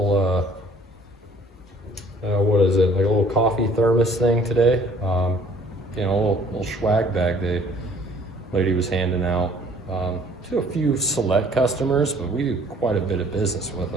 what is it? Like a little coffee thermos thing today. You know, a little swag bag the lady was handing out to a few select customers, but we do quite a bit of business with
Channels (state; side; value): normal; both; correlation 0.57